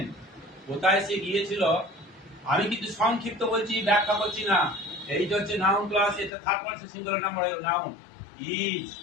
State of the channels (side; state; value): right; drops out; at 6.3 s